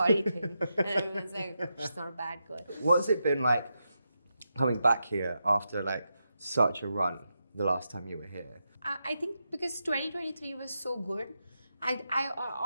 thing, and everyone's like, she's not a bad girl. What's it been like coming back here after like such a run the last time you were here? I think because 2023 was so good, I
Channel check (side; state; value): both; inverted; correlation -0.86